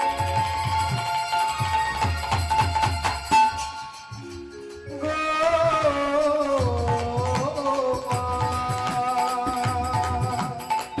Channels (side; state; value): both; identical; correlation 1.00